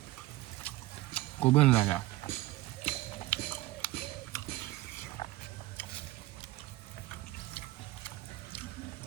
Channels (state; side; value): quieter; left; 17.4 dB